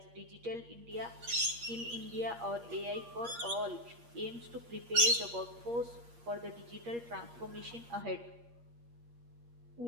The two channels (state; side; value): late; left; 8.5 ms